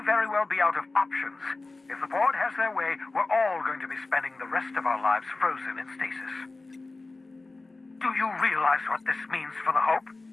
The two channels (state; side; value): quieter; right; 3.4 dB